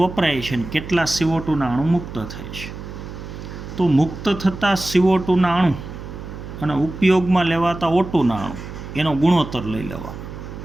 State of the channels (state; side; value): noise; right; hum, 11 dB below the sound